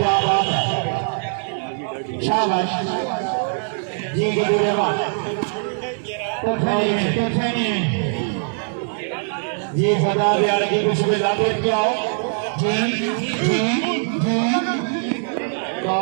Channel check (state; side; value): silent; left; digital silence